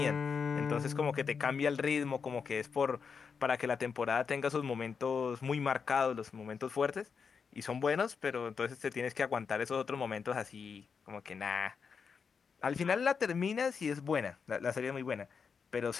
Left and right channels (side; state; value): right; quieter; 5.9 dB